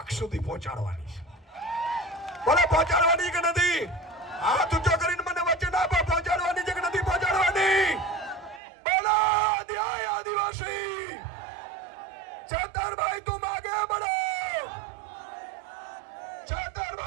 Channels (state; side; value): drops out; left; at 8.6 s